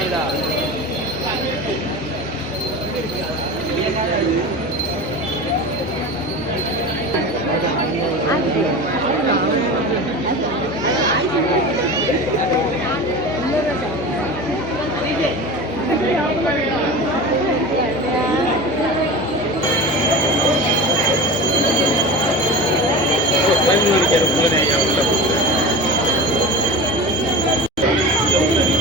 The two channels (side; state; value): both; normal; correlation 0.31